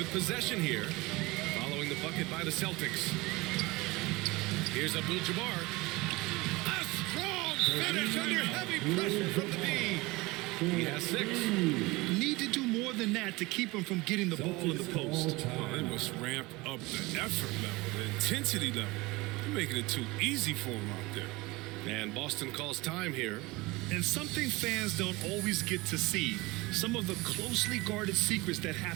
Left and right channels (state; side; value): quieter; left; 22.4 dB